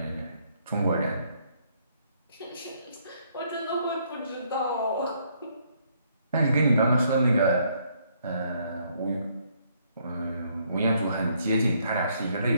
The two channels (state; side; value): inverted; both; correlation -0.69